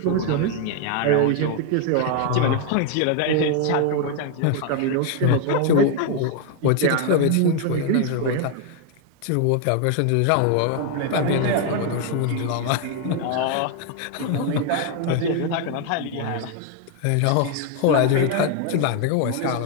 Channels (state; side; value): different; both; correlation 0.00